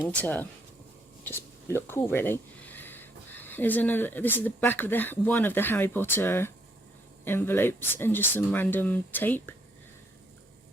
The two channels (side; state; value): both; normal; correlation 0.70